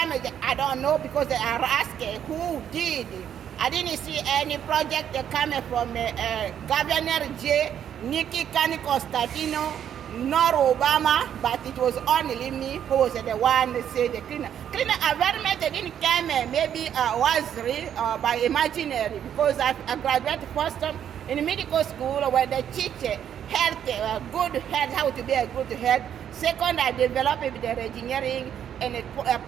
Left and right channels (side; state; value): left; quieter; 9.4 dB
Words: I don't know, because they are asking who did. I didn't see any project coming from Governor J. Nikki Kani Constantino, nor Obama, but it was only me who was the one that said the cleaner. Cleaner environment didn't come maybe was real by imaginary, because I graduated first in medical school where they teach health, good health, how to be a good health. Second, I developed the engineering in the